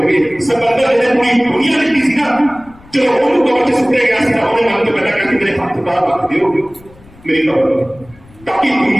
ਗਏ, ਸਮੁੰਦਰ ਜਿਹੜੇ ਪੂਰੀ ਦੁਨੀਆ ਦਿੱਤੀ ਸੀ ਨਾ, ਚਲੋ ਉਹਨੂੰ ਕਵਰ ਚ ਸੁੱਟਿਆ ਗਿਆ ਸੀ ਤਾਂ ਉਹਨੇ ਮਨ ਤੋਂ ਪਹਿਲਾਂ ਕਹਿੰਦੇ ਮੇਰੇ ਹੱਥ ਬਾਹਰ ਰੱਖ ਦਿਓ ਮੇਰੀ ਕਵਰ, ਤਾਂ ਕਿ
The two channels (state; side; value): noise; left; rumble, 25 dB below the sound